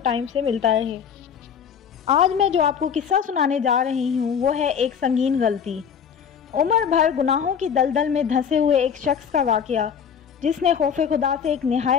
से मिलता रहे। आज मैं जो आपको किस्सा सुनाने जा रही हूँ वो है एक संगीन गलती। उम्र भर गुनाहों की दलदल में धंसे हुए एक शख्स का वाक़या जिसने खौफ खुदा से एक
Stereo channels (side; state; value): right; quieter; 7.4 dB